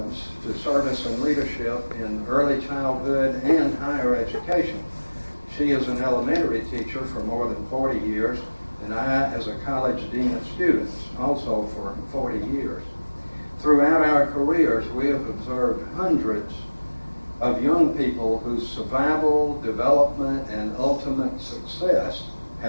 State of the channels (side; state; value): both; inverted; correlation -1.00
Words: to service and leadership in early childhood and higher education. She is an elementary teacher for more than 40 years, and I as a college dean of students, also for 40 years. Throughout our careers, we have observed hundreds of young people whose survival, development, and ultimate success